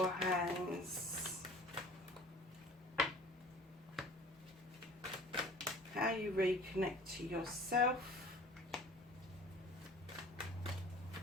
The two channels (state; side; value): normal; both; correlation 0.46